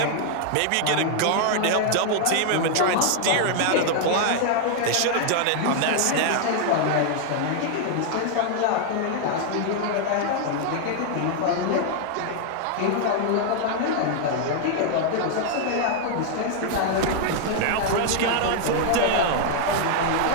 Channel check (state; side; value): different; both; correlation 0.00